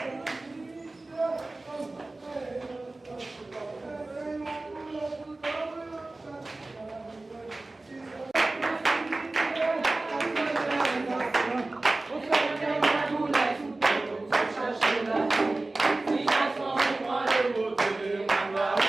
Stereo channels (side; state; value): left; quieter; 3.0 dB